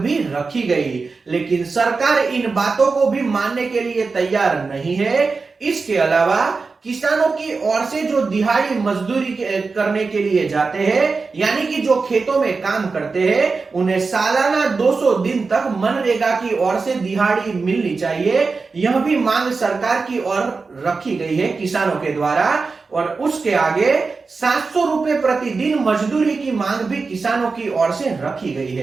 रखी गई। लेकिन सरकार इन बातों को भी मानने के लिए तैयार नहीं है। इसके अलावा किसानों की ओर से जो दिहाड़ी मजदूरी करने के लिए जाते हैं, यानी कि जो खेतों में काम करते हैं, उन्हें सालाना 200 दिन तक मनरेगा की ओर से दिहाड़ी मिलनी चाहिए। यह भी मांग सरकार की ओर रखी गई है किसानों के द्वारा। और उसके आगे 700 रुपए प्रतिदिन मजदूरी की मांग भी किसानों की ओर से रखी गई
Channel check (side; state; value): left; quieter; 4.4 dB